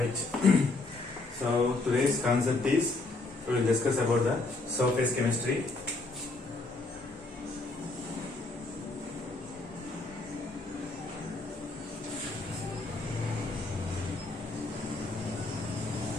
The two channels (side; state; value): right; quieter; 3.3 dB